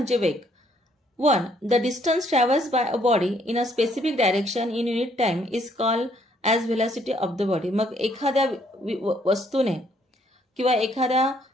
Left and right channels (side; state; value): both; normal; correlation 0.67